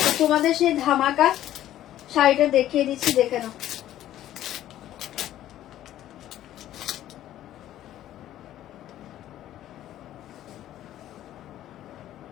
তোমাদের সেই ধামাকা শাড়িটা দেখিয়ে দিচ্ছি, দেখে নাও।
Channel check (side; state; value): right; quieter; 12.8 dB